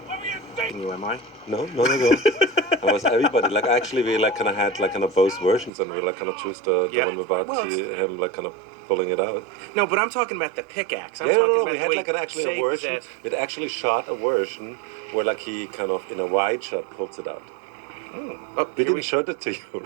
You, am I? No. I was everybody. Actually, we had both versions, and we choose the one without him pulling it out. No, but I'm talking about the pickaxe. We had actually a version. We'd actually shot a version where he in a wide shot pulls it out. Oh, We here didn't show that to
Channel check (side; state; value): left; drops out; at 5.7 s